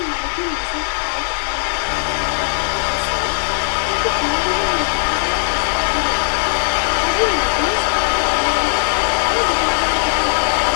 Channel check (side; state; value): right; silent; digital silence